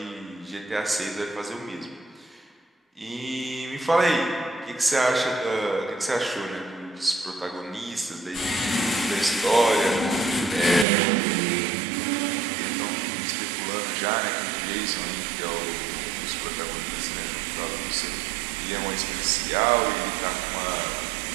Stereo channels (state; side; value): drops out; left; at 10.9 s